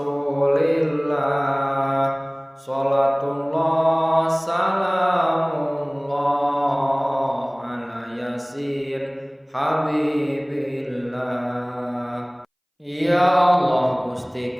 Salatullah salamullah ala yasin habibillah. Ya Allah, Gusti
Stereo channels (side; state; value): both; identical; correlation 1.00